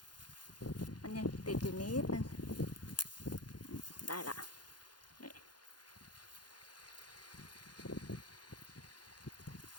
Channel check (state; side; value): late; right; 0.70 ms